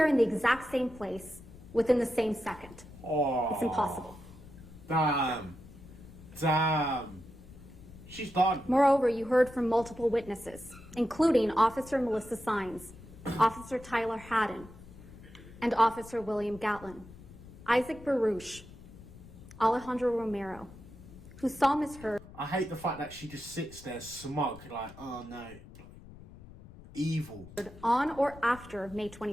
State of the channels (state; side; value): noise; left; rumble, 18 dB below the sound